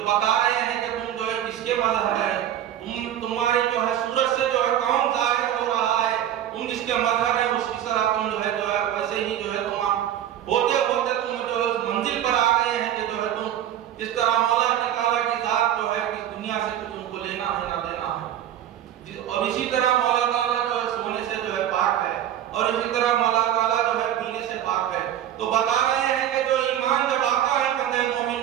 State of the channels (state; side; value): quieter; left; 11.1 dB